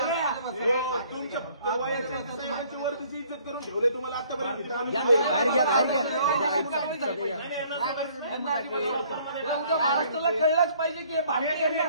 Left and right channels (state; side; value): inverted; both; correlation -0.59